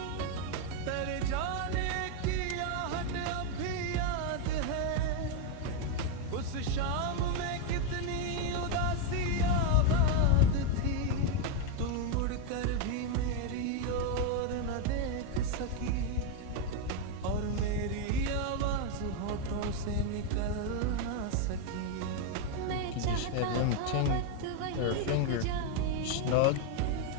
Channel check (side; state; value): both; different; correlation 0.01